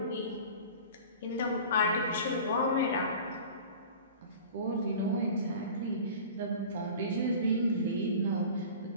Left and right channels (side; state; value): both; inverted; correlation -0.39